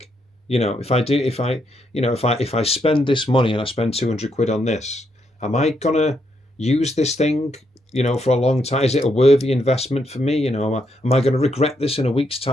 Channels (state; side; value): normal; both; correlation 0.77